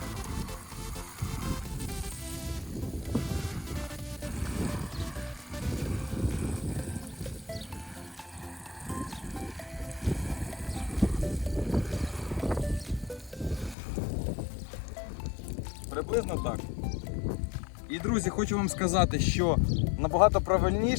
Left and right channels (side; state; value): right; drops out; at 13.8 s